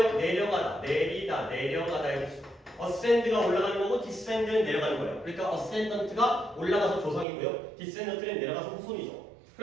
내려가다, 내리다, 내려가다의 뜻이에요. ascend가 올라가는 거고 descend는 내려가는 거예요. 그러니까 ascendant가 올라가서 조상이고요. descendant는 내려가서 후손이죠.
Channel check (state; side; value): drops out; left; at 7.2 s